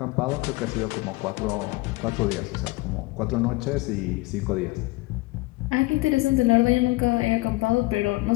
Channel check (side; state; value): right; quieter; 21.8 dB